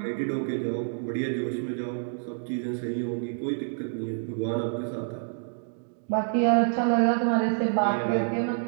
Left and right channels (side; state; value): left; silent; digital silence